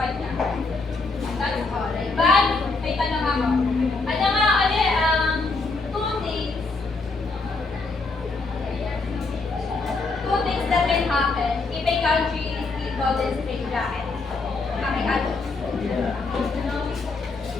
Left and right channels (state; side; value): quieter; right; 3.8 dB